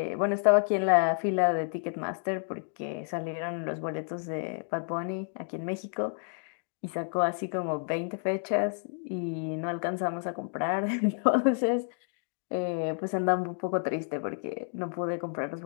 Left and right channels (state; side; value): silent; right; 58 dB below the other